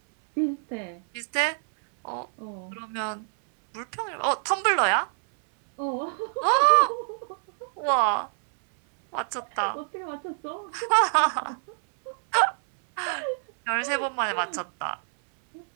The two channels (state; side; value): silent; left; 61 dB below the other